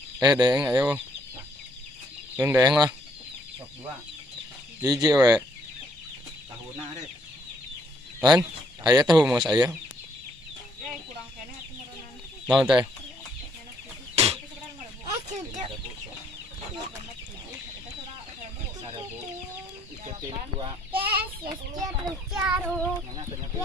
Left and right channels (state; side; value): normal; both; correlation 0.67